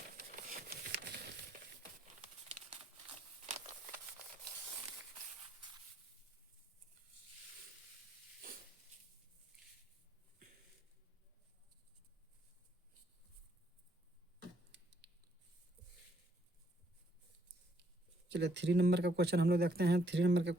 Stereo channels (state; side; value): normal; both; correlation 0.70